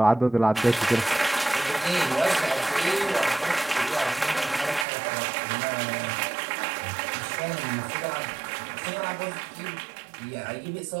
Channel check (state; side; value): drops out; left; at 4.9 s